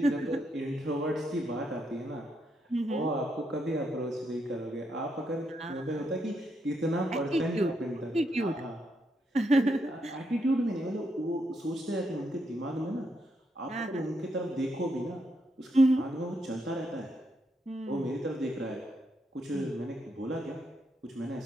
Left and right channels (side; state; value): both; normal; correlation 0.79